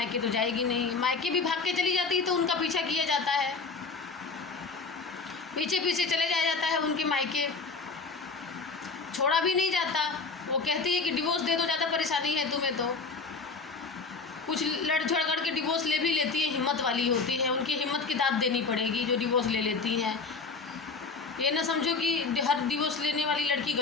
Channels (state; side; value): quieter; right; 4.4 dB